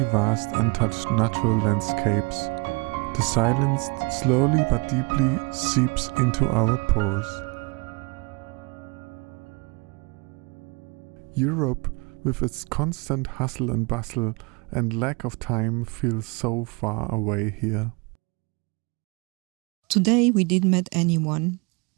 vast untouched natural landscapes. The silence slowly but deeply seeps into our pores. Europe, with its constant hustle and bustle and lack of time, feels so far away here. Today we didn't meet anyone,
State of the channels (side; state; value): left; quieter; 29.9 dB